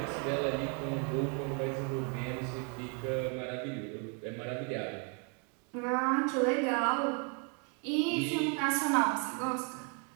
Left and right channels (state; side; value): quieter; left; 37.7 dB